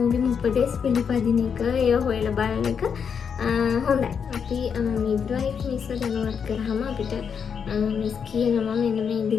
උපදෙස් පිළිපදින එක ඒව හොයලා බලන එක හොඳයි. අපි මිඩ්වයිෆ් මිස්ව දැනුවත් කරාම අපිට මිස් කියනවා මෙන්න මේ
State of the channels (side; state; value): right; quieter; 6.8 dB